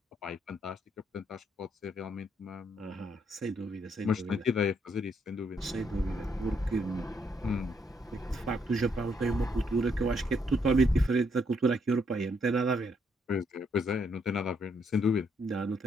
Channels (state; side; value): normal; both; correlation 0.73